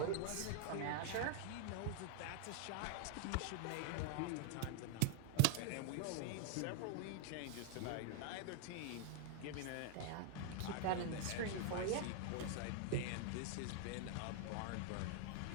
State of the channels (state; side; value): different; both; correlation 0.00